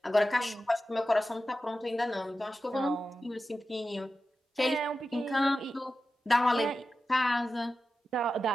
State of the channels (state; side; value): normal; both; correlation 0.92